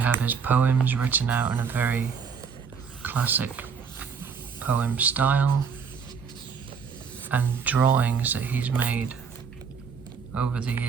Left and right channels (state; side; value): quieter; left; 6.2 dB